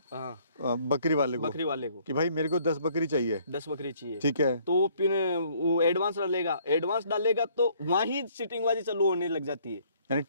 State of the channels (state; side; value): inverted; both; correlation -0.62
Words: बकरी वाले को कि भाई मेरे को 10 बकरी चाहिए, 10 बकरी चाहिए, ठीक है। तो वो एडवांस डालेगा तो वहीं सीटिंगबाजी चालू होने लग जाती है। यानी